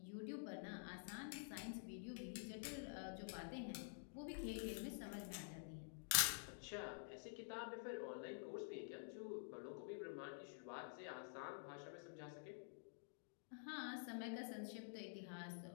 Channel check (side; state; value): right; silent; digital silence